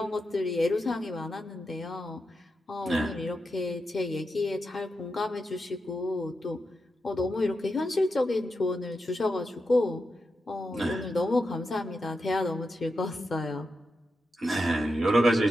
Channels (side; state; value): both; normal; correlation 0.87